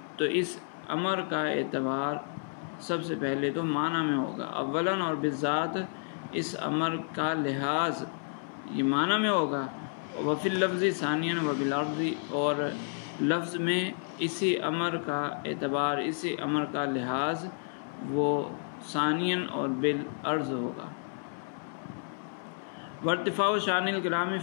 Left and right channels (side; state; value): right; silent; 57 dB below the other